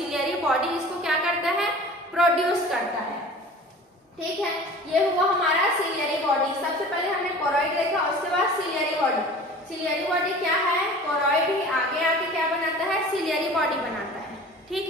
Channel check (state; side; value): normal; both; correlation 0.41